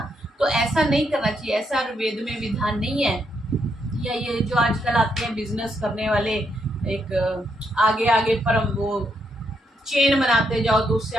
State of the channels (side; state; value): both; normal; correlation 0.78